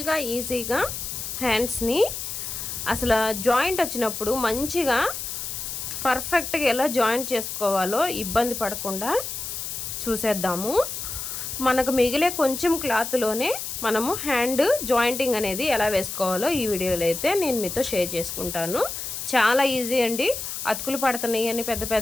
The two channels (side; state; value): left; noise; hiss, 6 dB below the sound